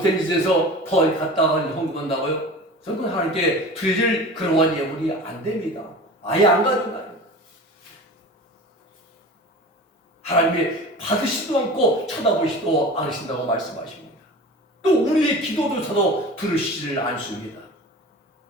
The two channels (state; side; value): normal; both; correlation 0.36